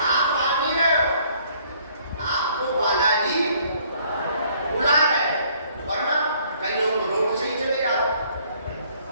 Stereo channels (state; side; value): inverted; both; correlation -0.62